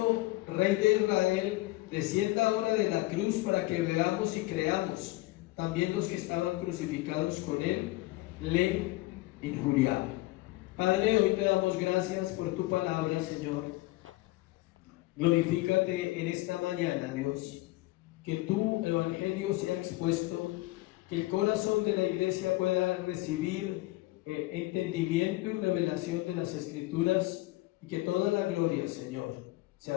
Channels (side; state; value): right; quieter; 19.4 dB